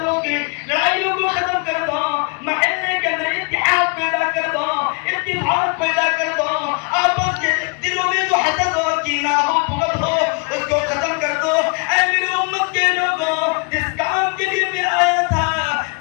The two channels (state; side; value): quieter; right; 34.2 dB